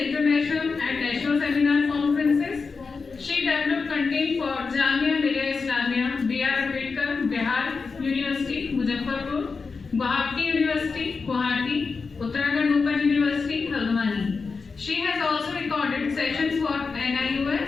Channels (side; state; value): right; quieter; 4.7 dB